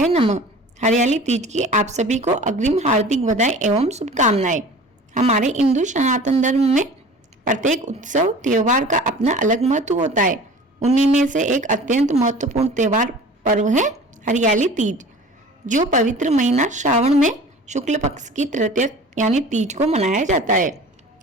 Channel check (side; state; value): both; normal; correlation 0.42